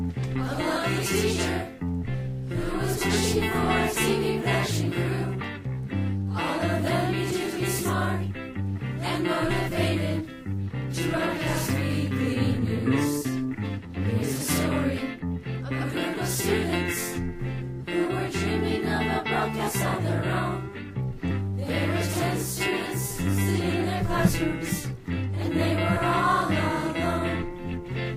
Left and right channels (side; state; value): both; identical; correlation 1.00